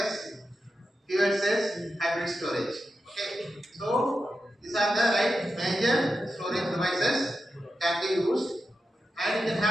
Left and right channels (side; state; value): both; normal; correlation 0.90